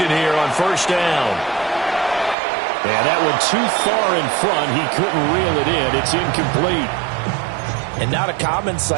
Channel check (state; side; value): drops out; left; at 2.4 s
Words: here on first down. And that one too far in front. He couldn't reel it in. It's incomplete. And not a common